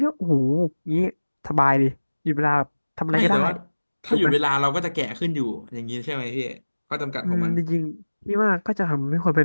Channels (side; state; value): both; inverted; correlation -1.00